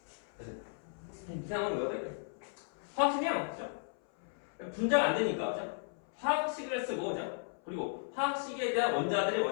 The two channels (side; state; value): right; silent; 54 dB below the other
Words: 이상한 거야. 화학식량 분자가 안 되니까 화학식을 쓰고 그리고 화학식에 대한 원자들의